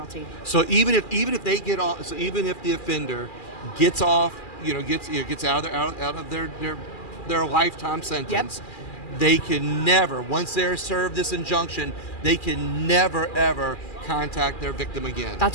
So even if they get off, so even if the offender gets off, gets out of their lifetime sentence, They can never, once they're served this injunction, they can never ever contact their victim again.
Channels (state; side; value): late; right; 2.4 ms